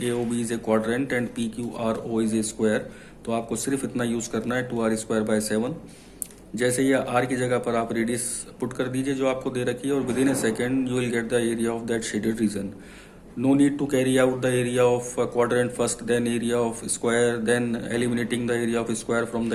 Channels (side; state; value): both; identical; correlation 1.00